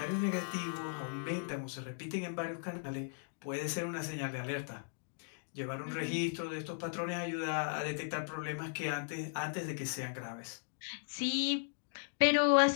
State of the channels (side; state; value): right; silent; digital silence